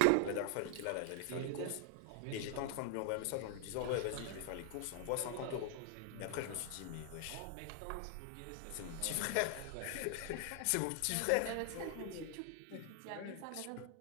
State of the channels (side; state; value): both; different; correlation 0.00